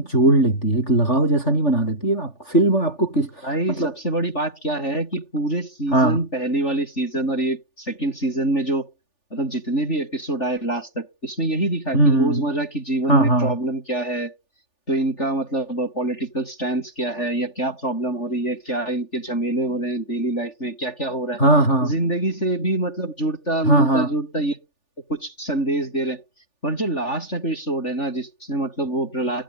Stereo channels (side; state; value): right; late; 3.4 ms